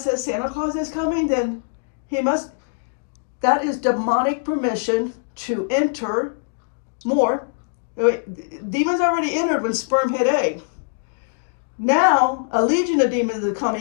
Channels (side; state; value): right; silent; digital silence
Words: Santa Claus is coming, then he must. That is demonic permission to enter more. Demons already entered when sperm hit egg. Now, a legion of demons are